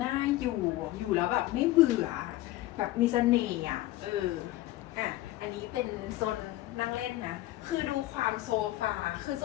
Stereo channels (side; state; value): right; quieter; 16.5 dB